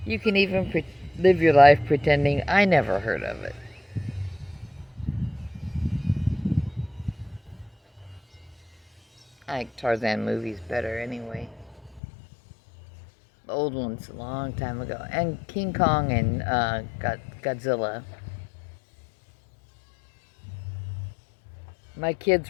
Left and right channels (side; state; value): right; drops out; at 12.0 s